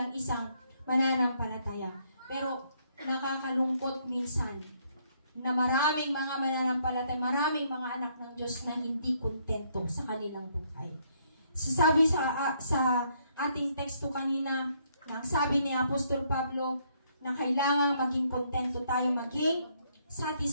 isang mananampalataya. Pero nakakalungkot minsan na maraming mga mananampalataya, maraming mga anak ng Diyos na hindi kontento sa kanilang buhay. So sabi sa ating teksto kanina, nang sabi ni Apostol Pablo na kailangan maging kontento tayo, maging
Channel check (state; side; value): inverted; both; correlation -0.70